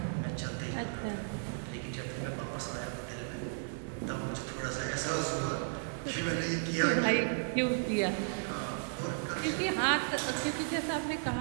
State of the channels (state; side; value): silent; left; digital silence